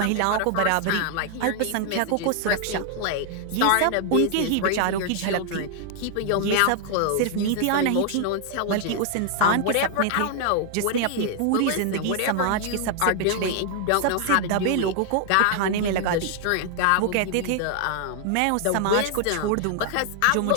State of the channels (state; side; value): different; both; correlation 0.00